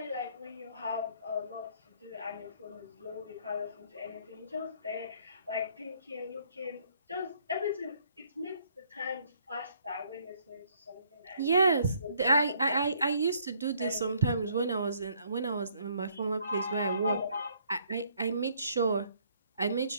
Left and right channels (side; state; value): both; inverted; correlation -0.65